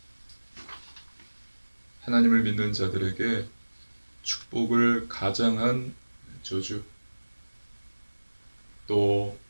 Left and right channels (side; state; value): both; inverted; correlation -1.00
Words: 하나님을 믿는 자들에게 축복을 가장한 저주, 또